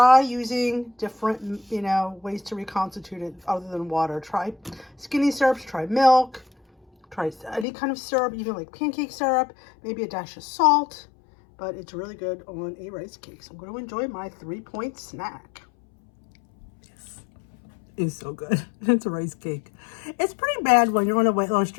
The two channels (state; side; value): drops out; right; at 7.7 s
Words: using different, ways to reconstitute it other than water. Try skinny syrups, try milk, try any kind of syrup, even like pancake syrup, maybe a dash of salt, but it's really good on a rice cake. So I'm going to enjoy my 3-point snack. Is so good. It's a rice cake. It's pretty bad when you're on a weight loss